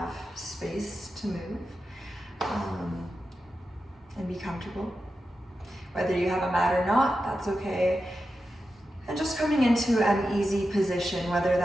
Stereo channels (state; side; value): normal; both; correlation 0.90